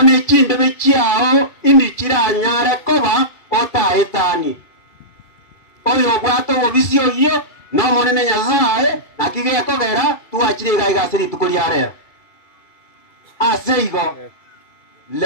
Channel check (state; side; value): late; right; 2.4 ms